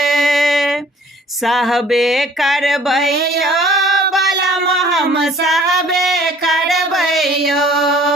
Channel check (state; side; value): normal; both; correlation 0.54